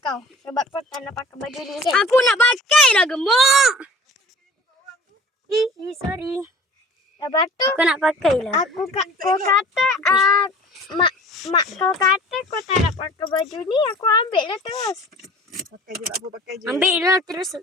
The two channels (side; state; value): both; normal; correlation 0.45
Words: kau. Sebab kau tak nak pakai baju ni kan? Aku nak pakai lah gemuk. Sorry. Lepas tu, Aku nak pakai lah. kau kata, mak kau kata kau tak nak pakai baju ni, aku ambil lah terus. Pakai je tak apa, pakai je. Ambil lah terus.